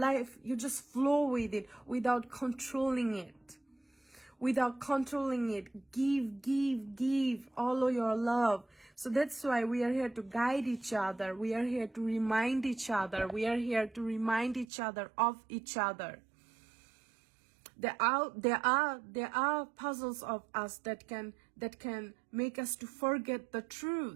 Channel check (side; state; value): left; drops out; at 14.7 s